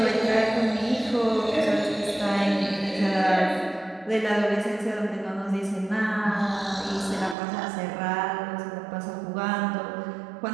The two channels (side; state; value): left; drops out; at 7.4 s